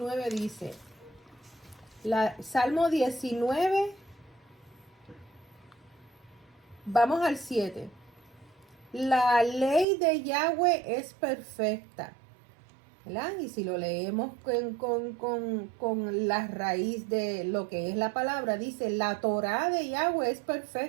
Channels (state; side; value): drops out; left; at 9.9 s